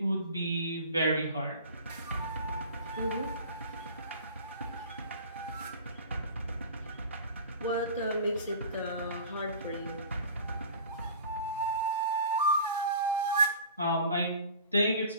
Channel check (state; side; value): inverted; both; correlation -0.41